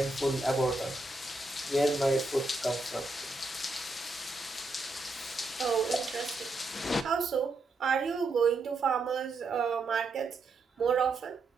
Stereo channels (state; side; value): quieter; left; 3.2 dB